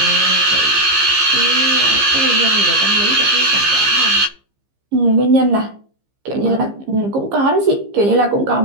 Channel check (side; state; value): left; late; 15 ms